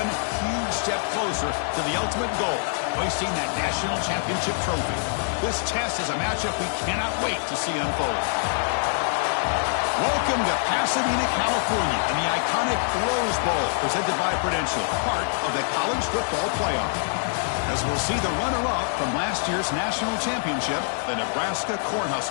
huge step closer to the ultimate goal, hoisting that national championship trophy. This test is a matchup we cannot wait to see unfold. Welcome to Pasadena, California, and the iconic Rose Bowl, presented by Prudential, part of the college football playoff. As we'll see the runner-up from last year's national championship, the Nebraska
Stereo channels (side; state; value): right; silent; digital silence